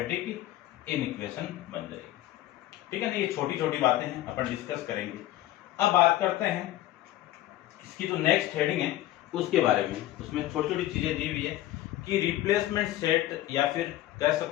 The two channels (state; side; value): quieter; right; 14.7 dB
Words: इनइक्वेशन बन जाएगी। ठीक है ना। ये छोटी छोटी बातें हैं, अपन डिस्कस करेंगे। अब बात करते हैं इसकी जो नेक्स्ट हेडिंग है उसके बारे में। उसमें छोटी छोटी चीजें दी हुई है कि रिप्लेसमेंट सेट, या फिर कह